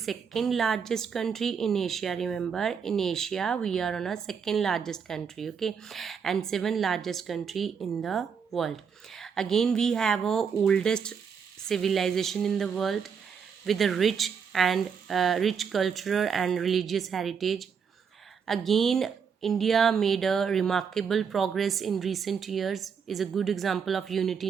largest country in Asia. Remember, in Asia, we are on a second largest country, okay, and seventh largest country in the world. Again, we have a oldest civilization in the world with a rich cultural and religious heritage. Again, India made a remarkable progress in recent years, is a good example of unity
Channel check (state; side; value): quieter; left; 6.6 dB